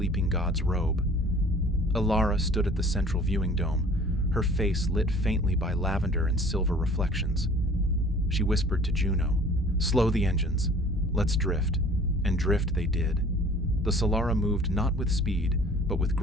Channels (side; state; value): both; normal; correlation 0.49